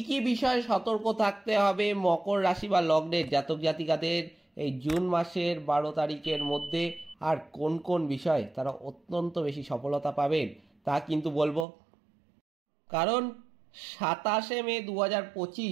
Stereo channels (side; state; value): left; drops out; at 11.7 s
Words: কি বিষয়ে সতর্ক থাকতে হবে মকর রাশি বা লগ্নের জাতক জাতিকাদের এই জুন মাসের 12 তারিখের মধ্যে, আর কোন কোন বিষয়ে তারা অত্যন্ত বেশি সফলতা পাবেন তা কিন্তু বলবো। কারণ 27শে মে